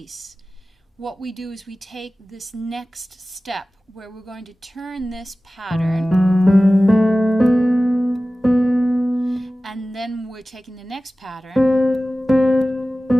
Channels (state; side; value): normal; both; correlation 0.97